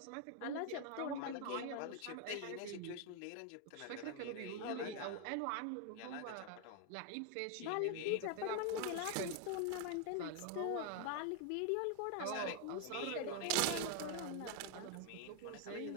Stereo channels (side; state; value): both; different; correlation 0.00